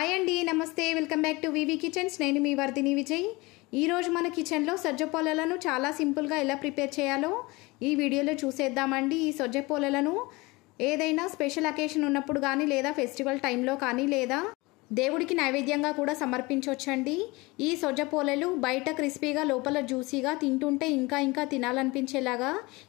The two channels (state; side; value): quieter; right; 23.6 dB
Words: అండి, నమస్తే. Welcome back to VV kitchens. నేను మీ వర్ధిని విజయ్. ఈరోజు మన కిచెన్లో సజ్జ పోలలను చాలా సింపుల్గా ఎలా ప్రిపేర్ చేయాలో ఈ వీడియోలో చూసేద్దామండి. ఈ సజ్జ పోలలను ఏదైనా స్పెషల్ అకేషన్ ఉన్నప్పుడు కానీ, లేదా ఫెస్టివల్ టైంలో కానీ, లేదా దేవుడికి నైవేద్యంగా కూడా సమర్పించవచ్చండి. ఈ సజ్జ పోలలు బయట క్రిస్పీగా, లోపల జ్యూసీగా, తింటుంటే ఇంకా తినాలనిపించేలాగా